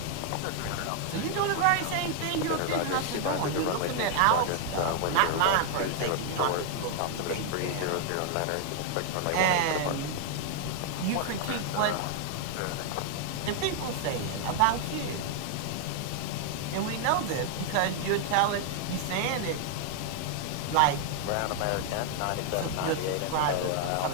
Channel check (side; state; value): both; different; correlation 0.00